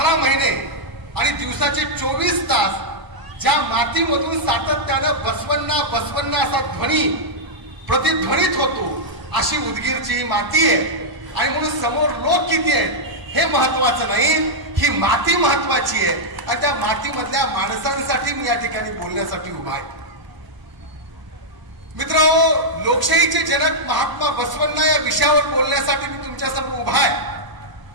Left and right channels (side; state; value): left; late; 1.0 ms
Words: महिने आणि दिवसाचे 24 तास ज्या मातीमधून सातत्यानं बसवण्णा बसवण्णा असा ध्वनी प्रतिध्वनित होतो अशी उदगीरची ही माती आहे. आणि म्हणून समोर लोक किती आहेत हे महत्वाचं नाही, ही माती महत्वाची आहे. आणि त्या मातीमधल्या माणसांसाठी मी या ठिकाणी बोलण्यासाठी उभा आहे. मित्रांनो, लोकशाहीचे जनक महात्मा बसवण्णा या विषयावर बोलण्यासाठी मी तुमच्या समोर उभा आहे.